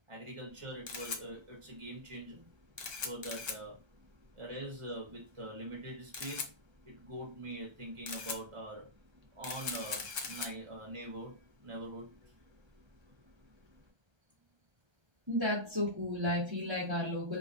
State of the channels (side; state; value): left; late; 1.3 ms